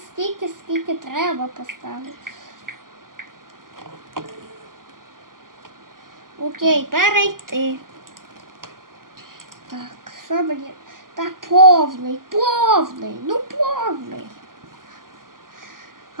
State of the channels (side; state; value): left; late; 0.91 ms